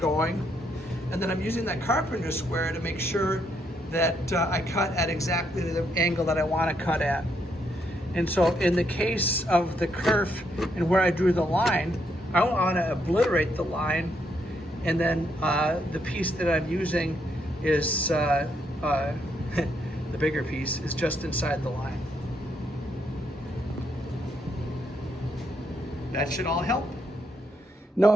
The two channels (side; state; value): both; normal; correlation 0.75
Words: And then I'm using that carpenter's square to make sure that I cut at exactly the angle that I want to cut at. And so in the case of the kerf and where I drew the line, I don't want to obliterate the line. And then the piece that I'm using is the bigger piece is just inside the line. That should all help. Now,